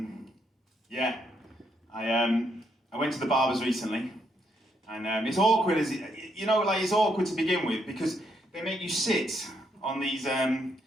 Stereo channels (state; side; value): normal; both; correlation 0.76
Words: I went to the barbers recently, and it's awkward, it's awkward to begin with because they make you sit on these